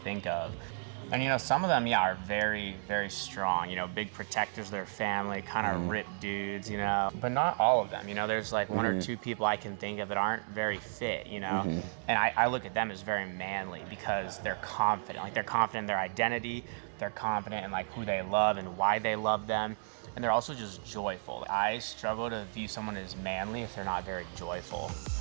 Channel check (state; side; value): silent; left; digital silence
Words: of. And some of them, are very, very strong, big protectors of their family, kind of ripped dudes, but not all of them. There's like one or two people I can think of that aren't very fit, and I look at them as very manly because they're confident. Like, they're confident in their identity, they're confident in like who they love and why they love them, and they're also just joyful. I struggle to view someone as manly if they're not very joyful.